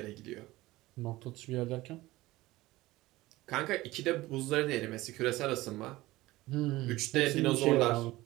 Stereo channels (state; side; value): quieter; left; 18.4 dB